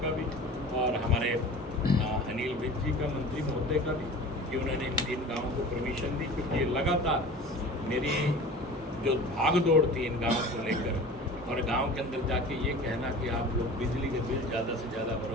का भी और हमारे अनिल विज जी का, मंत्री महोदय का भी, कि उन्होंने इन गाँवों को परमिशन दी, क्योंकि लगातार मेरी जो भाग दौड़ थी इन गाँवों को लेकर और गांव के अंदर जाके ये कहना कि आप लोग बिजली के बिल ज़्यादा से ज़्यादा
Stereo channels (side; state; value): both; normal; correlation 0.39